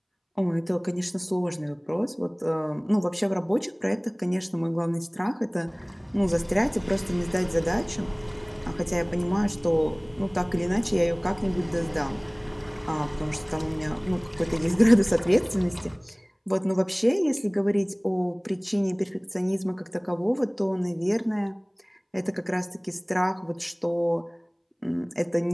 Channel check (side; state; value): both; identical; correlation 1.00